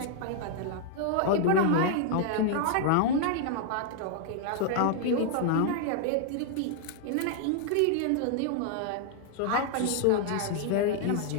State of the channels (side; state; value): both; different; correlation -0.01